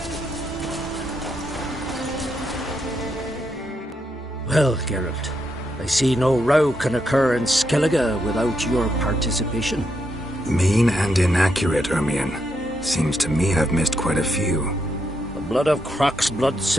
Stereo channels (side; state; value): both; normal; correlation 0.80